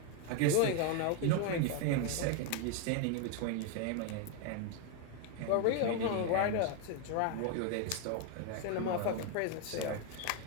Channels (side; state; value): both; different; correlation 0.01